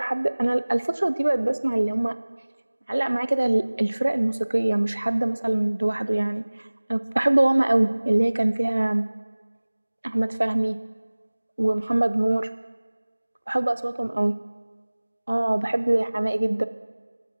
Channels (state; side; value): inverted; both; correlation -1.00